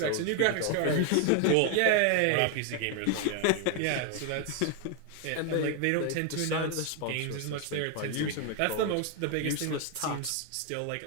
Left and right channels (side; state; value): both; different; correlation 0.01